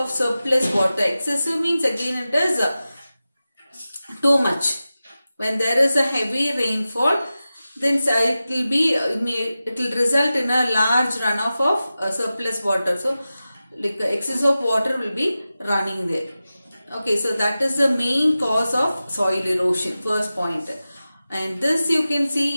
surplus water. Excessive means again it is too much. When there is a heavy rainfall, then it will result in a large runoff of surplus water. So like excess of water will be running there. Okay, so that is the main cause of soil erosion, first point. And this you can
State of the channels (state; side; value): inverted; both; correlation -0.94